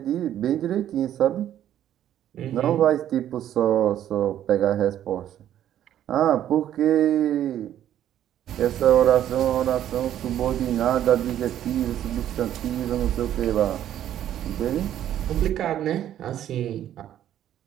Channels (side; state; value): left; quieter; 11.3 dB